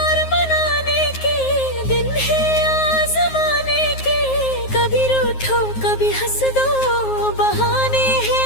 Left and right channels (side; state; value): right; late; 9.5 ms